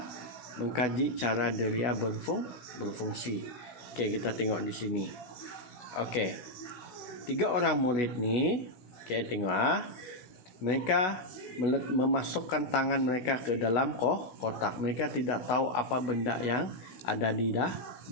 mengkaji cara deria berfungsi. Okey, kita tengok di sini. Okey. 3 orang murid ni, okey, tengok mereka memasukkan tangan mereka ke dalam kotak. Mereka tidak tahu apa benda yang ada di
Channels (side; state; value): right; late; 16 ms